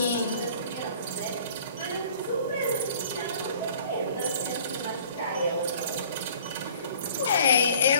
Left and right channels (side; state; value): both; inverted; correlation -0.51